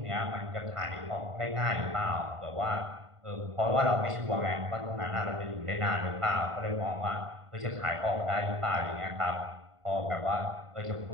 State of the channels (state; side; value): late; left; 1.5 ms